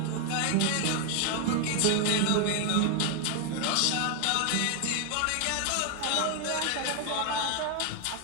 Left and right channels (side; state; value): both; different; correlation 0.00